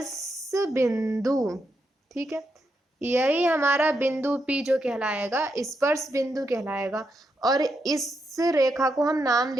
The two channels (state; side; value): normal; both; correlation 0.82